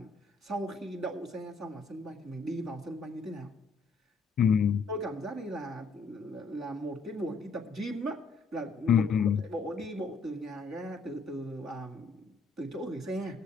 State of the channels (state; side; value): quieter; right; 4.3 dB